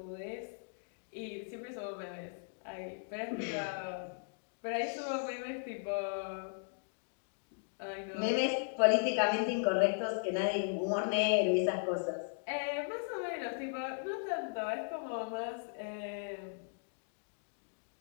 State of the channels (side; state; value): right; silent; digital silence